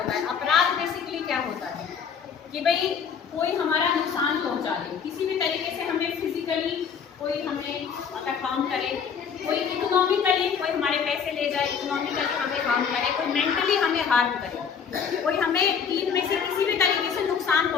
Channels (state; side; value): quieter; right; 6.8 dB